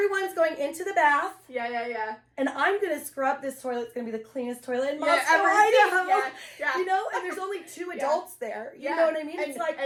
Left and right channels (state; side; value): identical; both; correlation 1.00